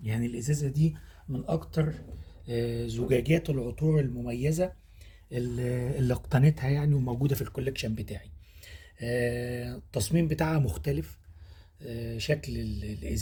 يعني الازازه دي من اكتر زجاجات العطور المميزه اللي اقتنيتها يعني، وموجوده في الكوليكشن بتاعي. التصميم بتاعها مختلف. شكل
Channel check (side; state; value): both; identical; correlation 1.00